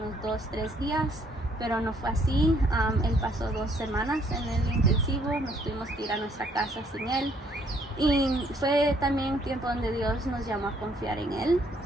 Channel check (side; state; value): both; normal; correlation 0.66